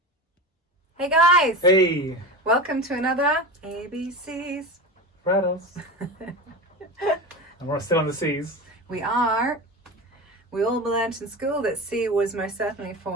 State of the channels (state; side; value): normal; both; correlation 0.27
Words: Hey guys! Hey! Welcome to another ABCs For adults. And we're still on the C's. We are. We all learnt in school that C was most certainly